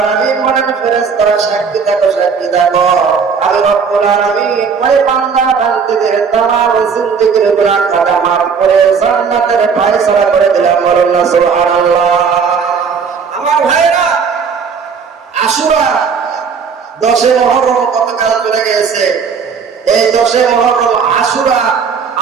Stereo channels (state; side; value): quieter; left; 6.0 dB